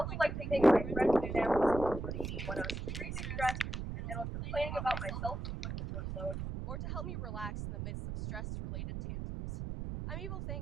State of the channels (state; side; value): noise; right; rumble, 5 dB below the sound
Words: like to thank my friends and family for supporting me when I was extremely stressed and was complaining about my self-inflicted workload, or to help me relax in the midst of stress-related tantrums. I'm